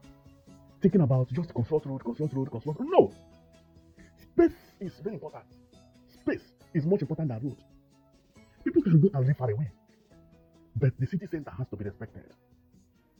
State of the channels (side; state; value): both; identical; correlation 1.00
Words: Thinking about just construct road. No! Space is very important. Space is much important than road. People can go and live far away. But the city center has to be respected.